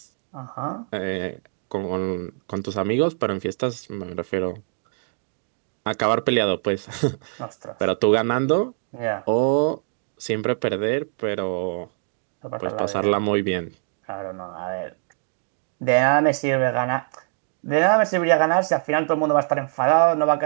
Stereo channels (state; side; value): silent; left; digital silence